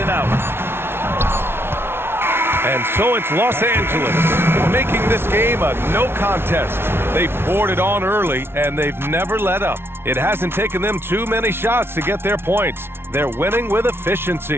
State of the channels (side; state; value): left; late; 0.12 ms